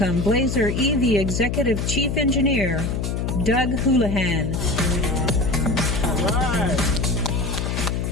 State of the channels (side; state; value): left; noise; hum, 1 dB below the sound